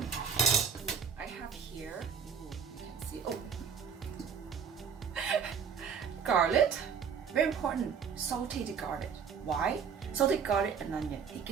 I have here, ooh, you can see, garlic, very important, sauteed garlic. Why? Sauteed garlic and onion, it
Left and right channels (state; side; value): quieter; left; 6.8 dB